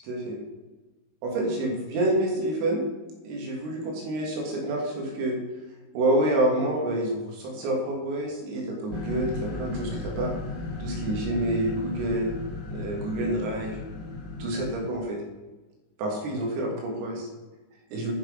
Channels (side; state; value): left; late; 19 ms